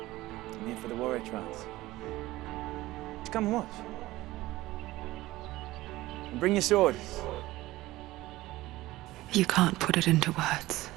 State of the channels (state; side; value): quieter; left; 17.7 dB